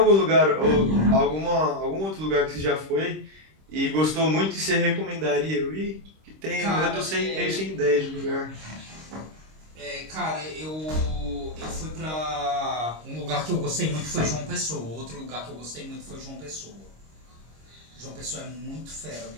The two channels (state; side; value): late; left; 26 ms